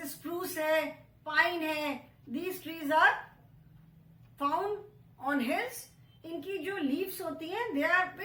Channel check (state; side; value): identical; both; correlation 1.00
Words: स्प्रूस है, पाइन है, these trees are found on hills इनकी जो लीव्स होती हैं they are